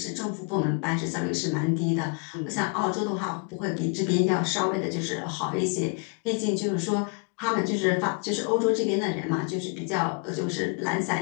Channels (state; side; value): quieter; right; 35.4 dB